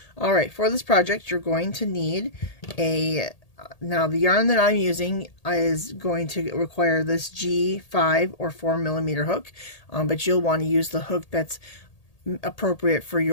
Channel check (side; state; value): right; late; 1.8 ms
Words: All right, for this project, you're going to need now the yarn that I'm using is going to require this G5 or 4mm hook, but you'll want to use the hook that's appropriate for